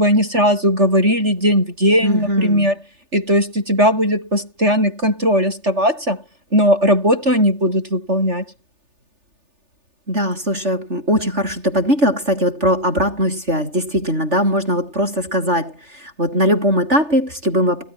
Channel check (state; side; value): late; left; 3.4 ms